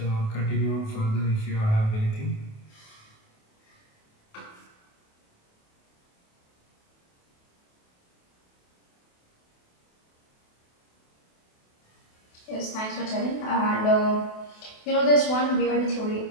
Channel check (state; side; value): late; right; 28 ms